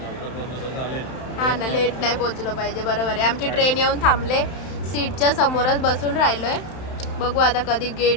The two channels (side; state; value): right; late; 31 ms